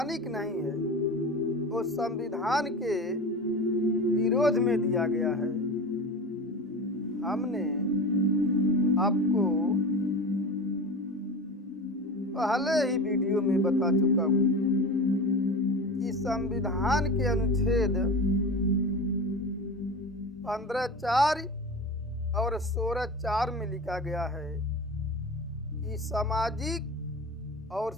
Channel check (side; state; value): both; normal; correlation 0.30